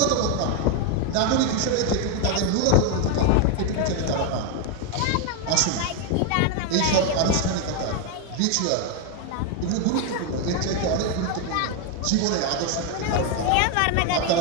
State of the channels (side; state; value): both; different; correlation 0.01